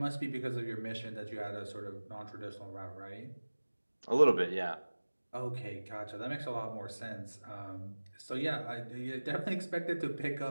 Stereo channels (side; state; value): both; inverted; correlation -1.00